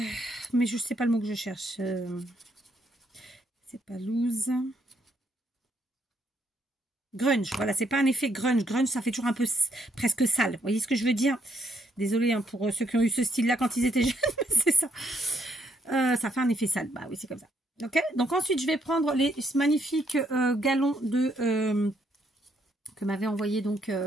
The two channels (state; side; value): normal; both; correlation 0.73